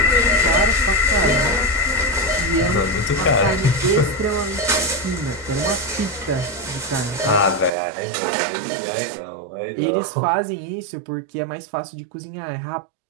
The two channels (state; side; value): drops out; left; at 7.7 s